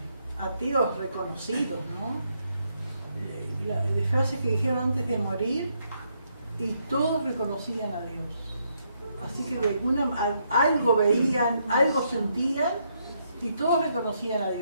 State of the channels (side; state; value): both; inverted; correlation -0.76